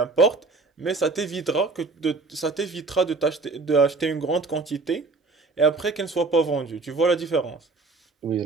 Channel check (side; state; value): left; quieter; 3.8 dB